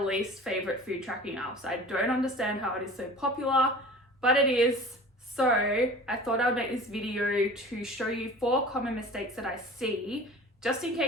least favorite food tracking apps. I don't understand how it is so popular, but it is. So I thought I would make this video to show you 4 common mistakes that I see, just in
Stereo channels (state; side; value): normal; both; correlation 0.40